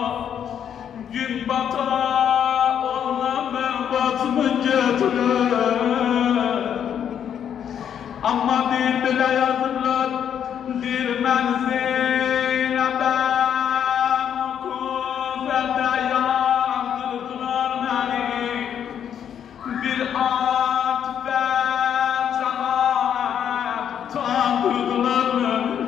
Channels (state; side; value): quieter; right; 8.9 dB